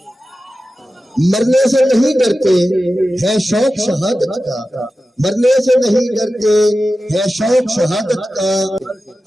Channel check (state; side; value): normal; both; correlation 0.93